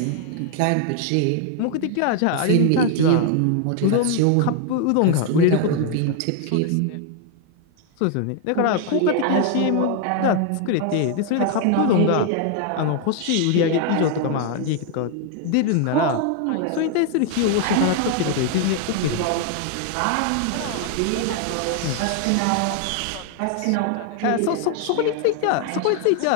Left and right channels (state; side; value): different; both; correlation 0.00